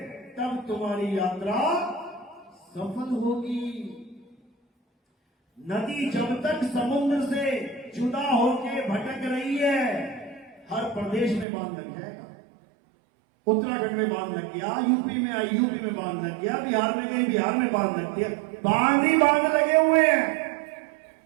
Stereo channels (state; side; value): drops out; left; at 11.5 s